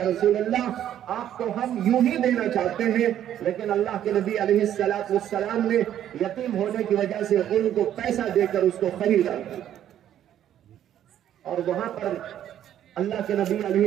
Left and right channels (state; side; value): quieter; left; 11.0 dB